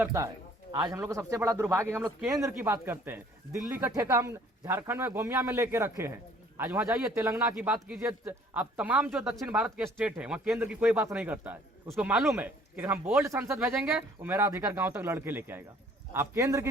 है। आज हम लोग का सबसे बड़ा दुर्भाग्य, हम लोग केंद्र की बात करते हैं। दिल्ली का ठेका हम झारखंड में गोमिया में लेके रखे हैं। आज वहां जाइए, तेलंगाना की बात कीजिए, अब तमाम जो दक्षिण भारत के स्टेट है वहां केंद्र की कोई बात नहीं करता है। उसको मालूम है कि हम बोल्ड संसद भेजेंगे वो मेरा अधिकार गांव तक लड़के लेके आएगा। आप केंद्र की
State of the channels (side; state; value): both; normal; correlation 0.56